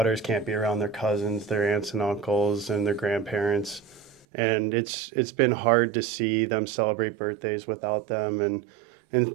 can't be around their cousins, their aunts and uncles, and their grandparents, and it's been hard to see them celebrate birthdays without them,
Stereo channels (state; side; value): drops out; left; at 4.2 s